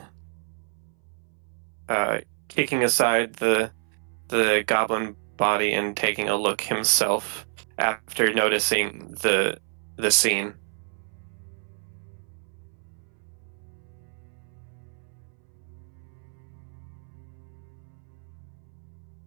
Kicking aside the goblin body and taking a look himself after noticing the scene.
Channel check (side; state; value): left; silent; 59 dB below the other